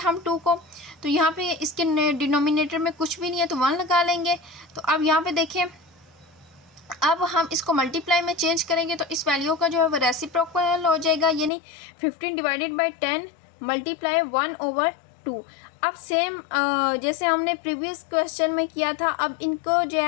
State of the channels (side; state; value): right; drops out; at 11.5 s